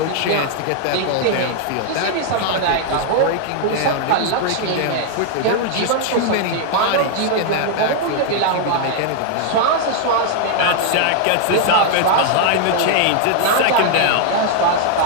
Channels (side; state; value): both; different; correlation 0.00